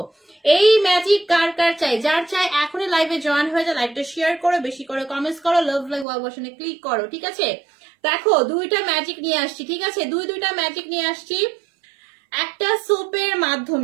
এই ম্যাজিক কার কার চাই? যার চাই এখনই লাইভে জয়েন হয়ে যায়, লাইভটা শেয়ার করো, বেশি করে কমেন্টস করো, লাভ লাইক ওয়াও বাটনে ক্লিক করো, ঠিক আছে? দেখো দুইটা ম্যাজিক নিয়ে আসছি, ঠিক আছে? দুইটা ম্যাজিক নিয়ে আসছি একটা সোপের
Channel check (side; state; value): left; drops out; at 6.1 s